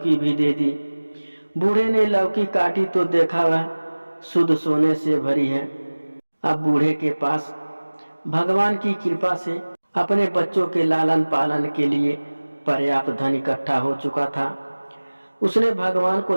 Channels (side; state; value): both; inverted; correlation -1.00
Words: भी दे दी। बूढ़े ने लौकी काटी तो देखा वह शुद्ध सोने से भरी है। अब बूढ़े के पास भगवान की कृपा से अपने बच्चों के लालन पालन के लिए पर्याप्त धन इकट्ठा हो चुका था। उसने भगवान